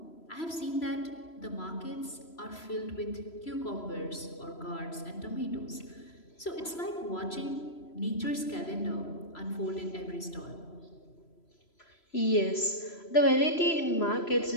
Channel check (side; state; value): right; late; 3.0 ms